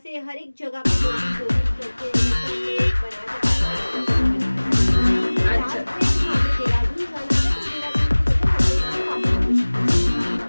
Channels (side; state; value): both; inverted; correlation -1.00